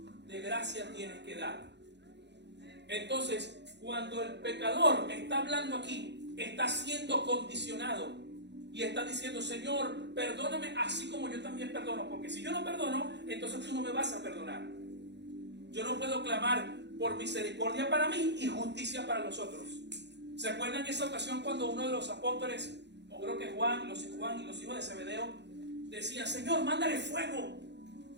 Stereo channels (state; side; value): late; left; 0.50 ms